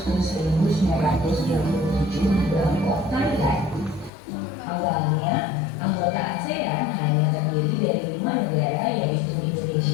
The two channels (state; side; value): drops out; right; at 4.1 s